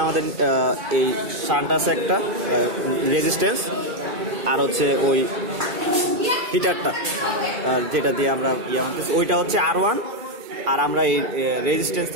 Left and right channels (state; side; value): late; left; 2.3 ms